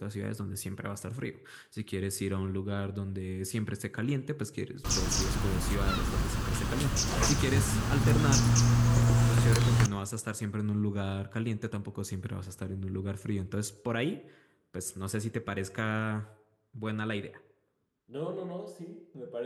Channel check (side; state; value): both; identical; correlation 1.00